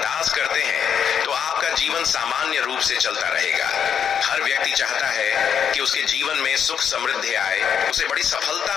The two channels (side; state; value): right; quieter; 7.9 dB